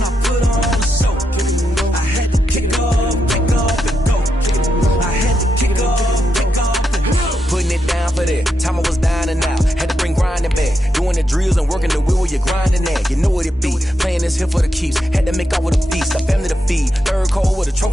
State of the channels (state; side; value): normal; both; correlation 0.84